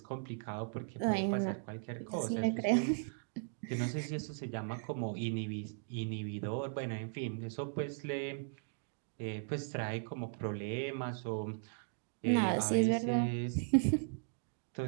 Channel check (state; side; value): silent; left; digital silence